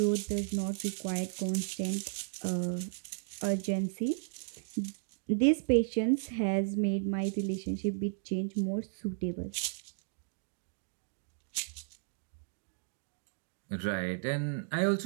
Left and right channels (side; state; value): left; silent; digital silence